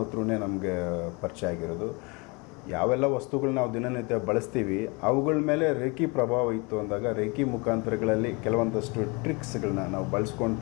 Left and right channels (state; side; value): quieter; right; 29.0 dB